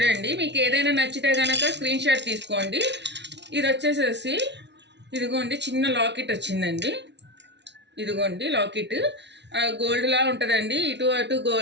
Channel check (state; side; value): late; left; 0.51 ms